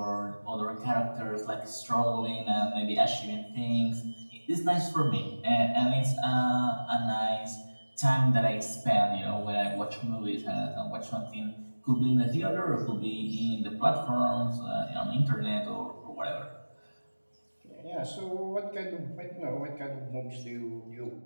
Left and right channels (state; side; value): inverted; both; correlation -1.00